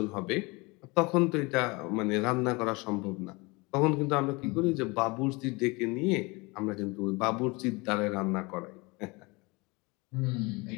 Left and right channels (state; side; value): quieter; right; 25.8 dB